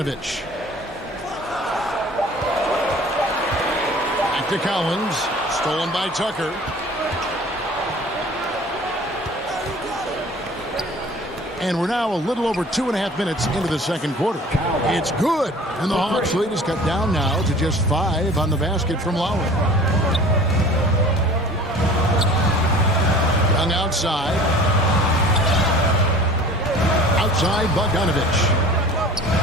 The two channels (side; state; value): both; normal; correlation 0.45